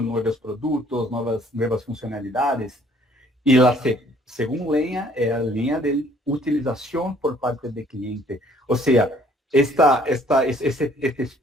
nuevos productos, nuevas funcionalidades. Y la segunda línea es la línea de utilización por parte del cliente. O sea, este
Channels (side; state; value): both; normal; correlation 0.60